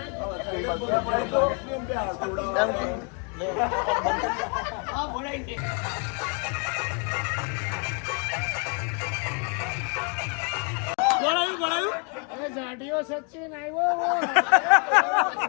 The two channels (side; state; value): right; quieter; 37.7 dB